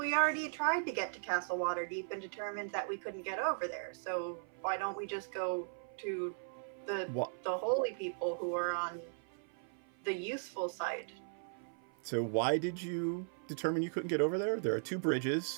already tried to get to Castle Waterdeep and determined that we couldn't get over there. So why don't we just go to the holy people who are on the useful side? So why did you determine you couldn't get over there? There are 2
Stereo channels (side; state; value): left; silent; 53 dB below the other